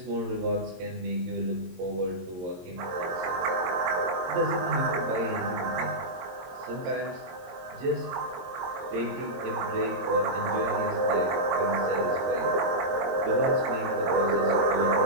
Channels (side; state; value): left; late; 22 ms